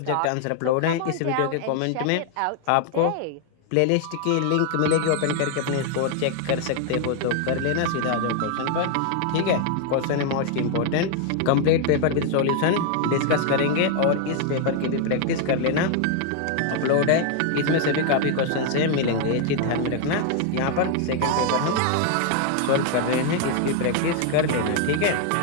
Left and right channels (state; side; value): different; both; correlation 0.00